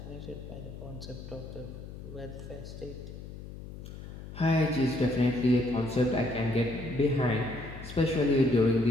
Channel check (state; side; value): noise; left; hum, 12 dB below the sound